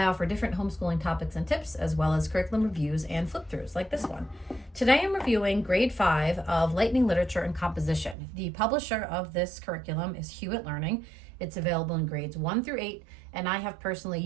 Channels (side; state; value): left; drops out; at 8.2 s